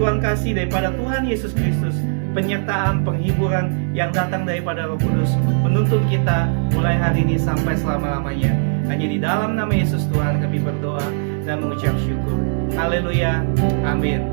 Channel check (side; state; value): left; silent; 66 dB below the other